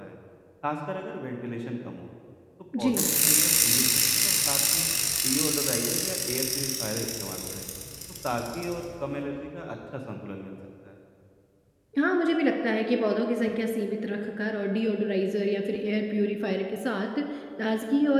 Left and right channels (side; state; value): both; identical; correlation 1.00